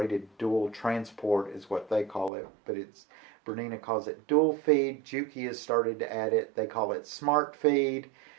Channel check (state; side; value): drops out; left; at 2.3 s